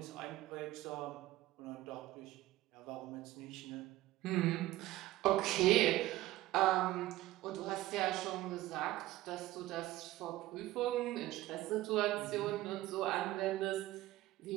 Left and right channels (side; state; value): left; quieter; 16.4 dB